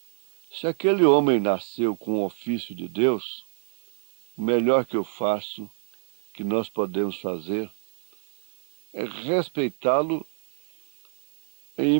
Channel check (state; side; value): silent; left; digital silence